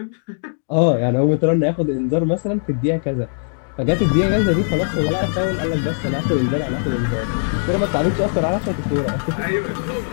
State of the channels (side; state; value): right; silent; digital silence